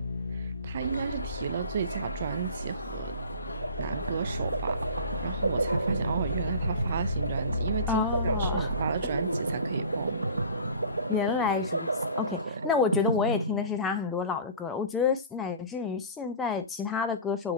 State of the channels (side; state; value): both; inverted; correlation -0.39